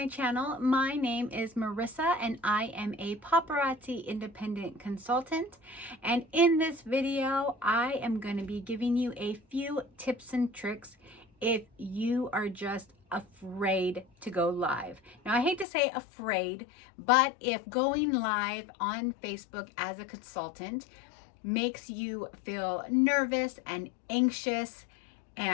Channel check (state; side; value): drops out; right; at 15.7 s